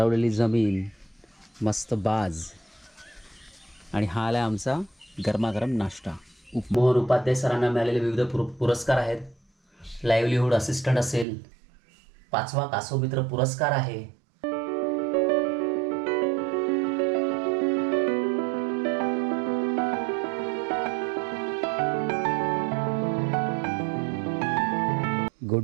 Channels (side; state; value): left; drops out; at 11.2 s